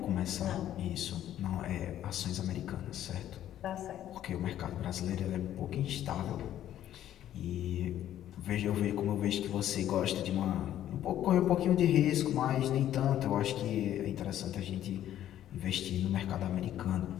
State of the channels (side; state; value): right; quieter; 11.8 dB